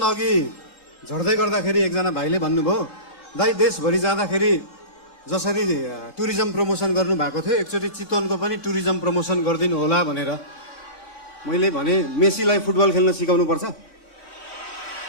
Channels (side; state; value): right; late; 3.5 ms